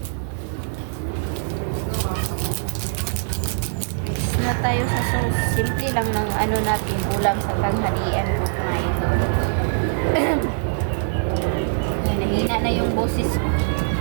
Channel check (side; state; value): left; silent; 58 dB below the other